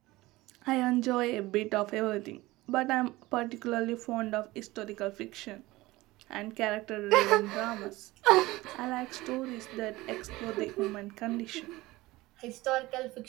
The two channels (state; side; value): quieter; left; 19.4 dB